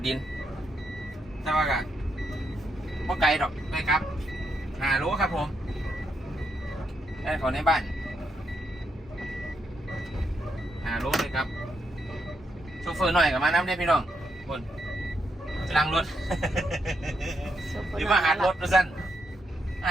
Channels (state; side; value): normal; both; correlation 0.80